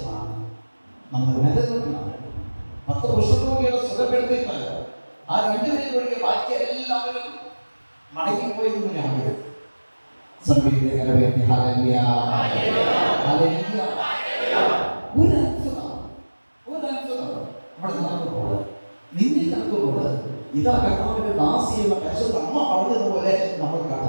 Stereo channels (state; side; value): inverted; both; correlation -1.00